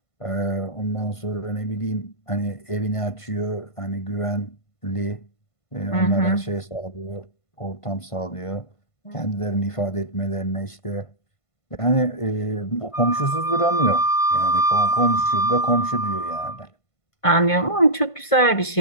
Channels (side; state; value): right; late; 1.5 ms